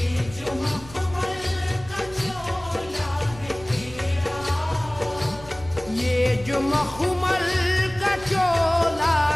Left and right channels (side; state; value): right; noise; rumble, 18 dB below the sound